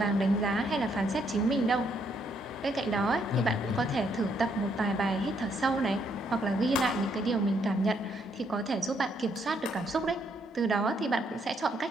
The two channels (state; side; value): normal; both; correlation 0.73